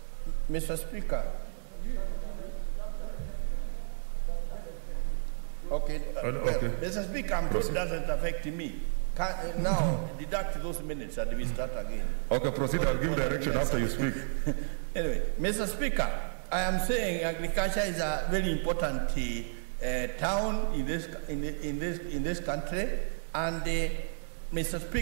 okay, okay. Mr. Speaker, I'm sure it doesn't affect me. Now, deduct those minutes and we start again. Okay, proceed. I'll give direction after you speak. Anyway, Mr. Speaker, I am saying agriculture is a very important town in this country, and Mr.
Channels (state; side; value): silent; left; digital silence